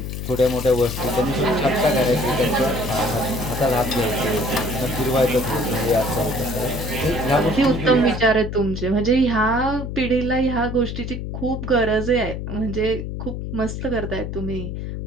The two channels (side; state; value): left; noise; hum, 6 dB below the sound